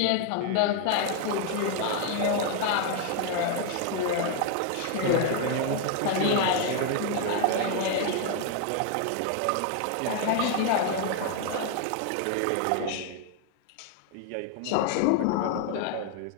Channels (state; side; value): different; both; correlation 0.00